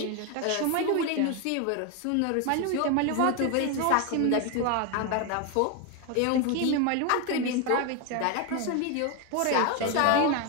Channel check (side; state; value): both; different; correlation 0.01